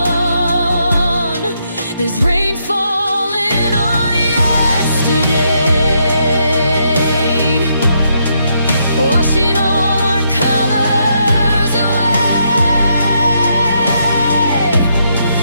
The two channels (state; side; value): inverted; both; correlation -0.77